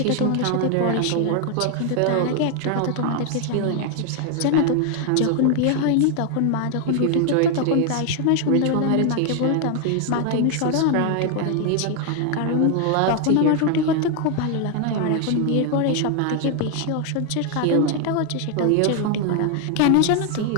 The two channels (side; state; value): both; different; correlation 0.01